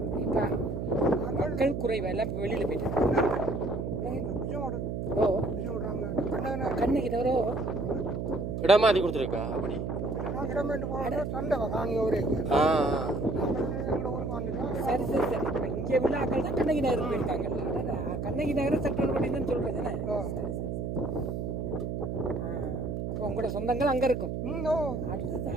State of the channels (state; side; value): noise; right; hum, 3 dB below the sound